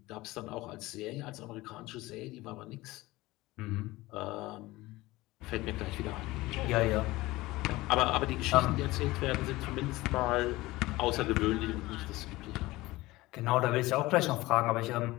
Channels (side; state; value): right; quieter; 19.3 dB